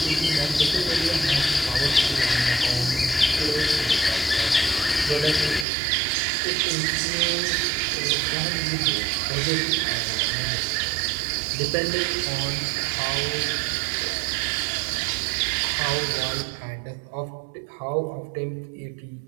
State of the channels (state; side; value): drops out; left; at 5.7 s